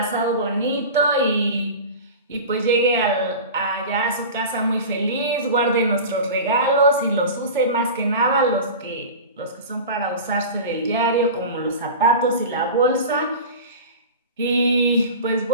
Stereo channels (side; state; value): both; inverted; correlation -0.32